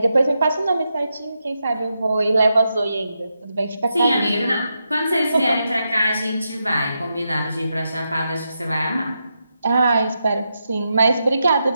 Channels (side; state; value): both; inverted; correlation -0.85